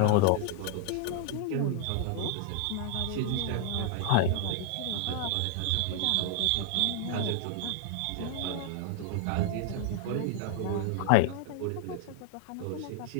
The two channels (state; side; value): different; both; correlation 0.00